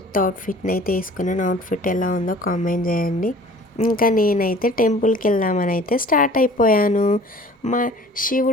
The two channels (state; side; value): normal; both; correlation 0.48